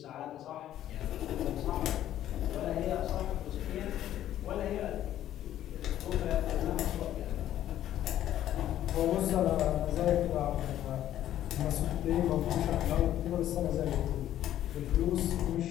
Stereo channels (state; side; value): quieter; right; 12.1 dB